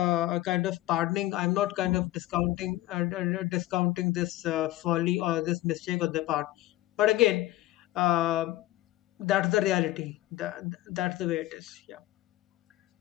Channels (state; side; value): quieter; right; 16.4 dB